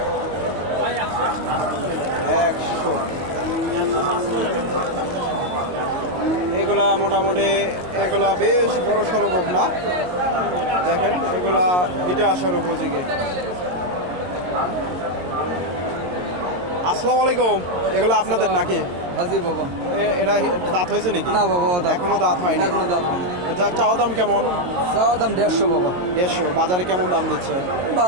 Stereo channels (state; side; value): late; left; 22 ms